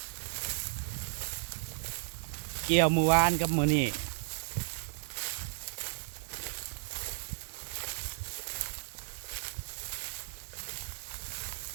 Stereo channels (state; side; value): silent; left; digital silence